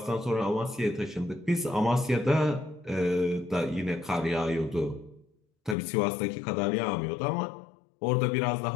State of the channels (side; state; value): right; drops out; at 5.8 s